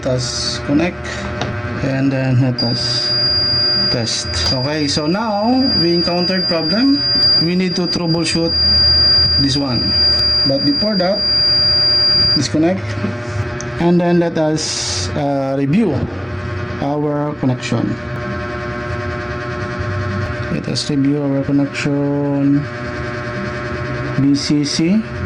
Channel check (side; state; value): both; identical; correlation 1.00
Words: us connect and then let us test. Okay, so now we encountered problem. We need to troubleshoot this one, but before that, disconnect and then let us review our connection. Let us review our connection. BCC,